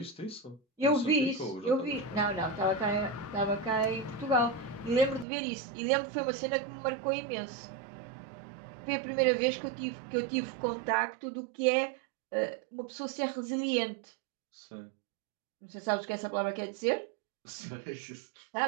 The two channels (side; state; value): left; drops out; at 5.2 s